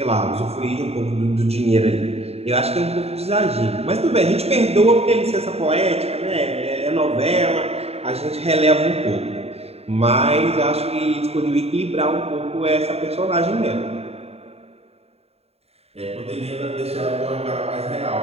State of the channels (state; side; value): late; left; 0.30 ms